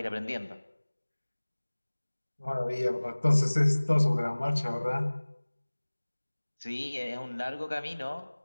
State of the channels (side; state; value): both; inverted; correlation -1.00